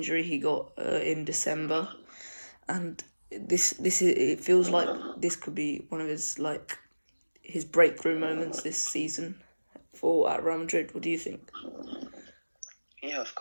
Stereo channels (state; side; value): inverted; both; correlation -1.00